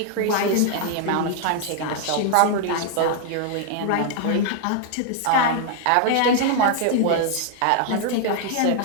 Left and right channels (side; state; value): both; different; correlation 0.00